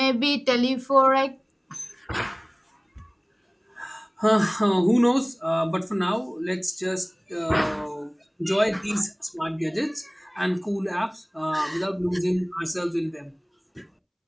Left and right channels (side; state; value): both; identical; correlation 1.00